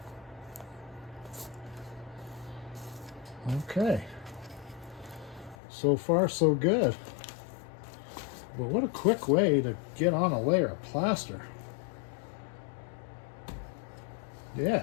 Okay, so far so good. But what a quick way to get on a layer of plaster. Yeah.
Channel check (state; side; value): drops out; right; at 5.6 s